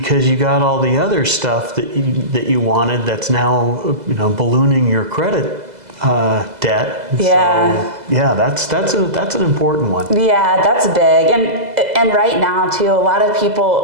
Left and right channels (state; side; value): late; left; 2.0 ms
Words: you got all the other stuff that you wanted that's now ballooning your credit debt. Yeah. So, yeah, that's an important one. Yeah, that's big. And right now too, a lot of